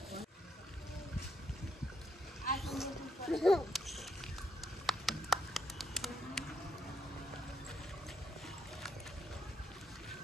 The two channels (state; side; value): normal; both; correlation 0.76